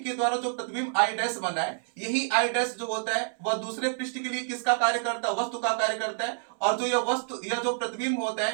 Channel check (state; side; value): silent; left; 59 dB below the other